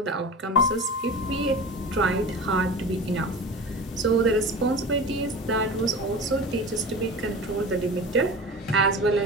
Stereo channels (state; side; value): normal; both; correlation 0.33